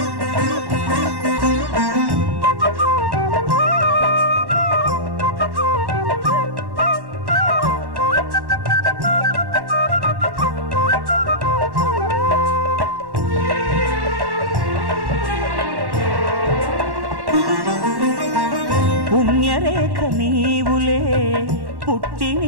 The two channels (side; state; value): left; late; 1.1 ms